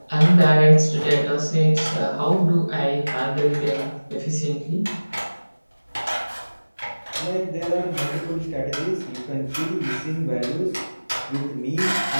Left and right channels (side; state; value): both; inverted; correlation -1.00